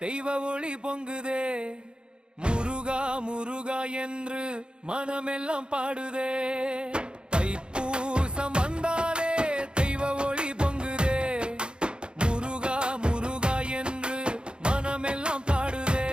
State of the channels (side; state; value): left; late; 0.051 ms